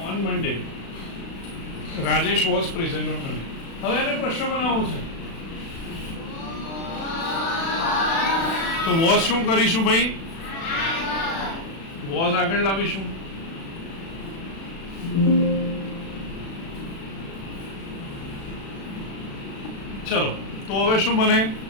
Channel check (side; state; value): right; late; 36 ms